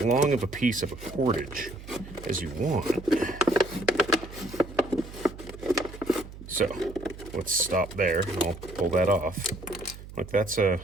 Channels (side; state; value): right; noise; hum, 15 dB below the sound